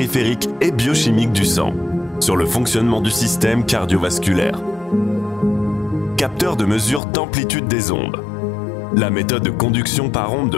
et biochimique du sang, sur le fonctionnement du système cardiovasculaire. Capteur de mesure d'amplitude des ondes. La méthode de conduction par onde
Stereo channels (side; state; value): right; drops out; at 7.0 s